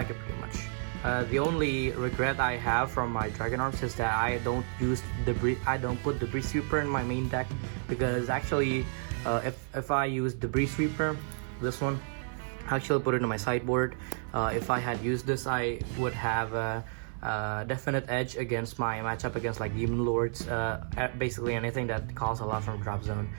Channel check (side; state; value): left; silent; 55 dB below the other